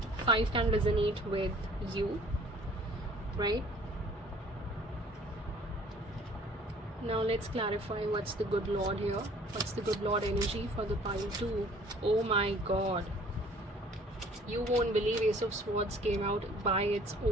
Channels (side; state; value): both; normal; correlation 0.54